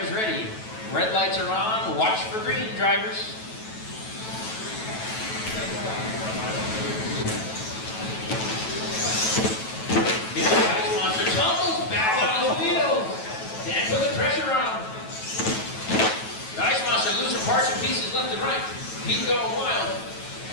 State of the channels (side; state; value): right; late; 9.2 ms